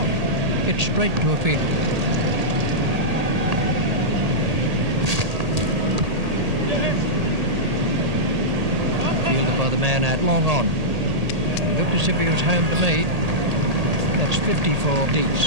It's straight to a field. Fielded by the man at long on. It looked as if he was home to me. That's 54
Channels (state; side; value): late; left; 1.8 ms